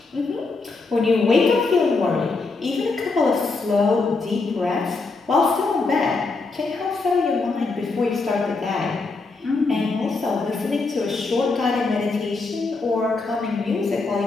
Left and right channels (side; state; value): right; quieter; 3.9 dB